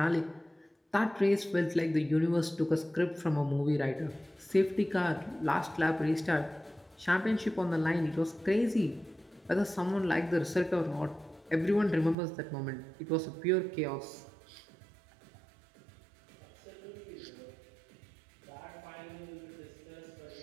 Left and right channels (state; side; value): drops out; left; at 12.2 s